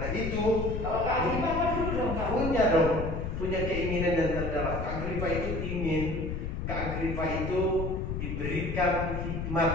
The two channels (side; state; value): left; noise; rumble, 4 dB below the sound